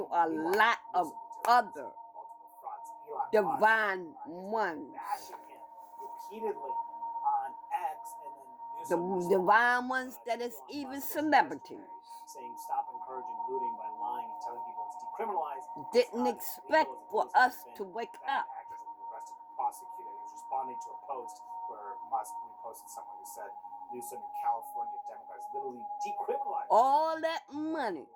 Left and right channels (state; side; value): identical; both; correlation 1.00